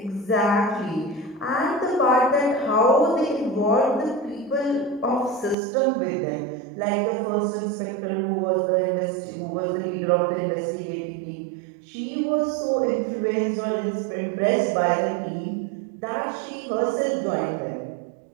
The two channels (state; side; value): drops out; left; at 5.6 s